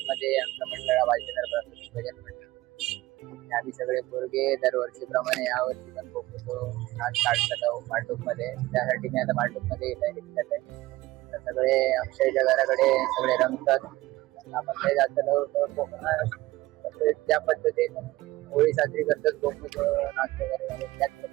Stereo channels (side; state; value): left; quieter; 18.3 dB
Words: मध्ये आमचं मंडळ भालचंद्र प्रास्ताविक भजन मंडळ. आम्ही सगळे पोरगे दरवर्षीप्रमाणे यावर्षी पण खूप नाच काढतात भांडूप मध्ये. त्यासाठी मी आता भांडूप मध्ये येत आहे. सगळे अक्षयच्या घराकडे सगळे रमतात. आपण काही जास्त त्या पद्धतीने होळी साजरी करतात. गोमुख नाच वगैरे त्याच